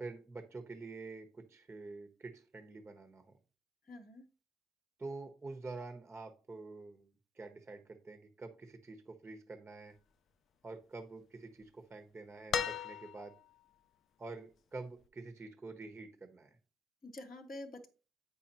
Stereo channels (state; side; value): normal; both; correlation 0.72